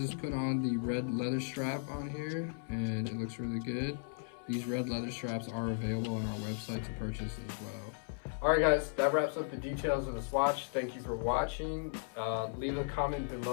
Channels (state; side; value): silent; right; 54 dB below the other